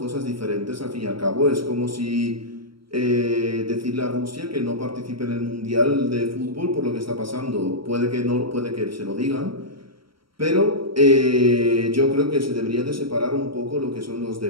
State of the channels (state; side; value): late; left; 0.74 ms